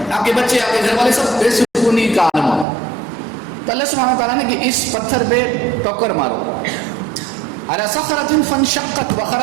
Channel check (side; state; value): left; drops out; at 2.7 s